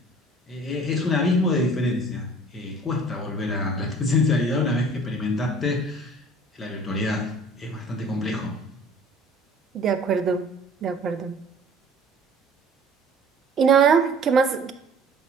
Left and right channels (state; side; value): normal; both; correlation 0.49